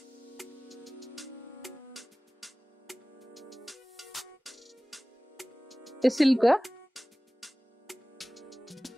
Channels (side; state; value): both; normal; correlation 0.98